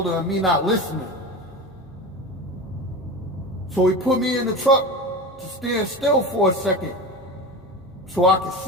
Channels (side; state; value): both; normal; correlation 0.27